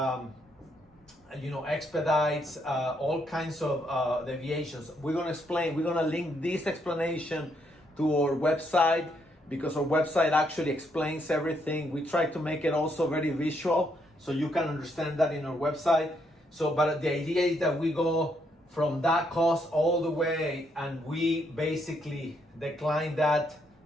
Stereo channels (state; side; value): normal; both; correlation 0.75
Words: expedites, all kinds of deviations. We're gonna link this explanation to our website, because our website actually explains everything. We try to make it also very visual, so you can understand that in our website. So, but the idea is that we go from that cost all the way, and we basically decline that